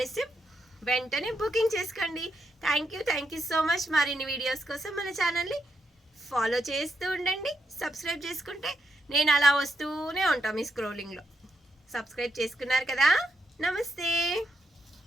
వెంటనే బుకింగ్ చేసుకోండి. Thank you so much. మరిన్ని వీడియోస్ కోసం మన ఛానల్ని ఫాలో చేస్తూ ఉండండి. సబ్స్క్రైబ్ చేసుకుంటే నేను అలా వస్తూనే ఉంటాను మీ స్క్రోలింగ్లో. సబ్స్క్రైబ్ చేసుకున్నారు కదా. నమస్తే.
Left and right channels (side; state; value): both; normal; correlation 0.81